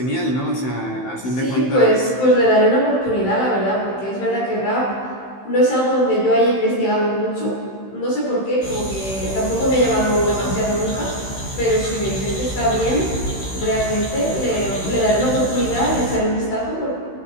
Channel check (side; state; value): right; late; 15 ms